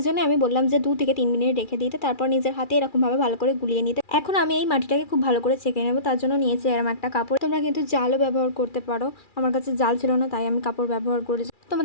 জন্য আমি বললাম যে 2 থেকে 3 মিনিট রেখে দিতে, তারপর নিজের হাতে এরকমভাবে ভালো করে গুলিয়ে নিতে। এখন আমি এই মাটিটাকে খুব ভালো করে ছেঁকে নেবো, তার জন্য নিয়েছি এরকম একটা কাপড়। তোমরা কিন্তু জালও ব্যবহার করতে পারো, আমার কাছে জাল ছিল না তাই আমি কাপড় ব্যবহার করেছি।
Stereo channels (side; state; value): right; late; 2.4 ms